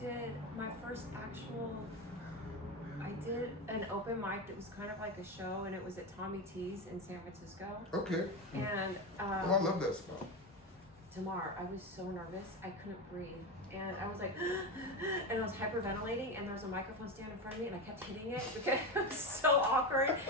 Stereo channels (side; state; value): both; normal; correlation 0.17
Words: My first actual. I did an open mic that was kind of like a show, and it was at Tommy T's in San Francisco. Okay. And I love that spot. Demar, I was so nervous, I couldn't breathe. And I was like, and I was hyperventilating, and there was a microphone stand in front of me, and I kept hitting it because it was so awkward.